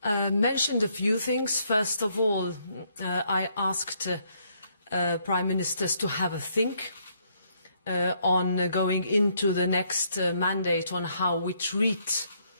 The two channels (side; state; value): both; inverted; correlation -0.71